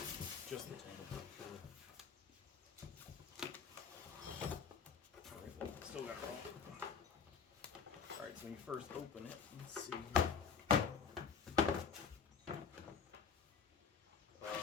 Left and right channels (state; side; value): quieter; right; 6.4 dB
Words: Just the tank, I'm pretty sure. Alright, well, still got it wrong. Alright, so when you first open it, let's see.